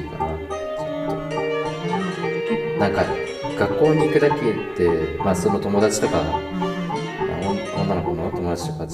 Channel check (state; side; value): identical; both; correlation 1.00